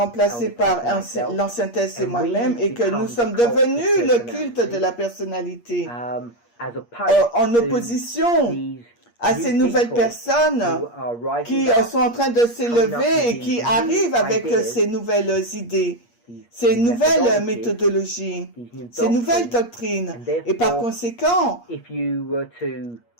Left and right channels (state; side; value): late; right; 8.5 ms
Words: par l'ancien Tess et moi-même, et que nous sommes devenus le culte de la personnalité en opposition à ces nouvelles personnes qui sont en train de s'élever et qui arrivent avec ces nouvelles idées, ces nouvelles méthodologies, ces nouvelles doctrines. Et par conséquent,